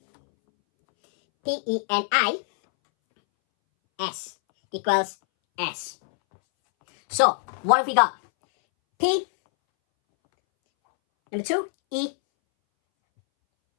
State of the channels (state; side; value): silent; right; 63 dB below the other